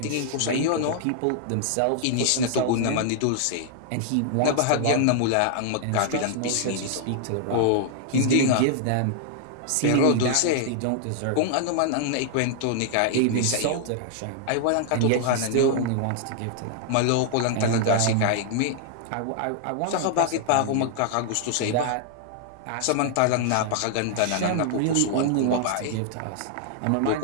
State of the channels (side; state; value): both; different; correlation -0.01